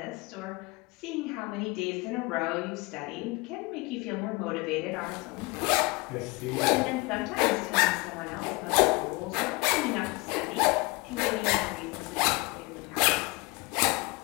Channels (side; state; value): right; quieter; 25.0 dB